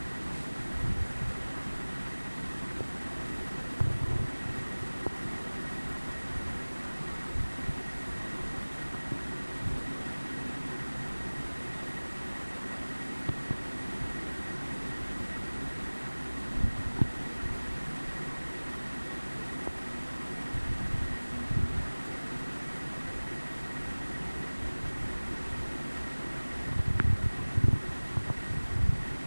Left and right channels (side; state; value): both; inverted; correlation -1.00